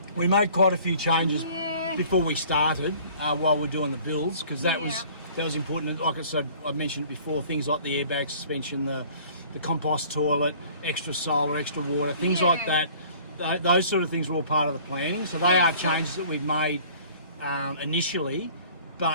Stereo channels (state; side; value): inverted; both; correlation -0.51